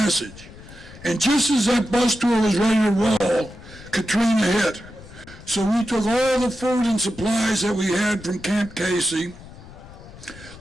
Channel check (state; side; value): noise; left; rumble, 18 dB below the sound